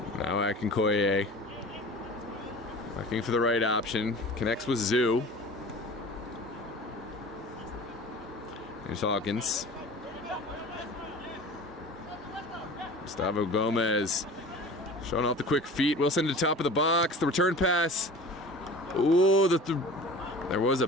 Now Akinkoye, looking for the right option. Connects with Zoo. Here's Hawkins. Gustavo Gomez showing off the quick feet. Wilson to the top of the box. The return pass. Ooh, there was a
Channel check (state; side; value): normal; both; correlation 0.40